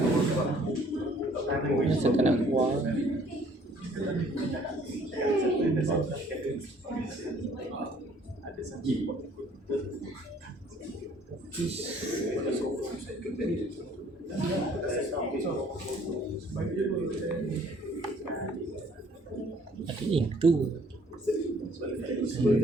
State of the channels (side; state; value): both; normal; correlation 0.58